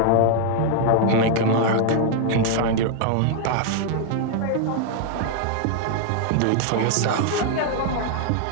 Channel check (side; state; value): both; different; correlation 0.00